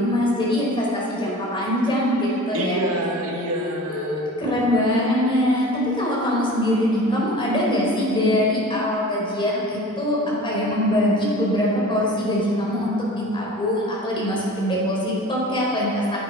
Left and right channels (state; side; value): normal; both; correlation 0.40